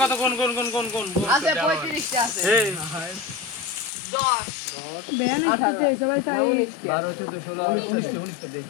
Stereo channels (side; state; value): right; drops out; at 3.9 s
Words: কত কোন আছে 35 টা আছে এই 10 বেয়ান আছে সবাই তাই 12 14 16 19 দে